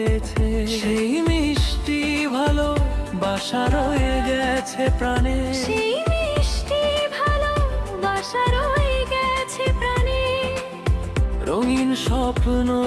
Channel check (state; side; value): identical; both; correlation 1.00